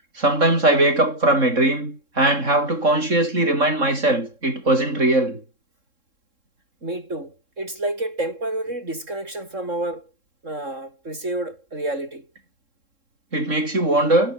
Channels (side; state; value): left; late; 3.7 ms